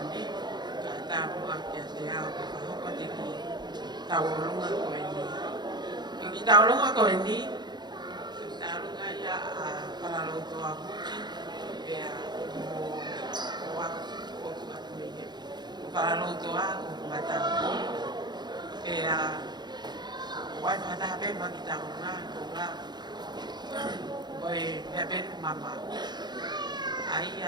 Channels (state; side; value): late; left; 0.21 ms